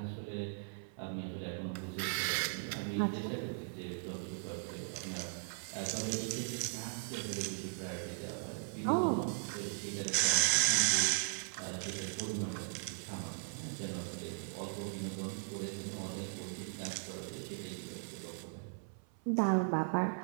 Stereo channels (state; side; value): silent; left; 52 dB below the other